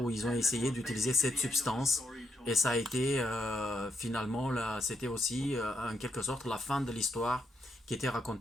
ils ont essayé d'utiliser cette substance. Et ça a été finalement, c'était aussi en quelque sorte la fin de l'histoire qui était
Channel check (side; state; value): both; normal; correlation 0.80